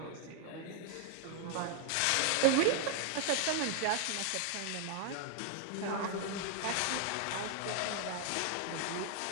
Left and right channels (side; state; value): both; different; correlation 0.00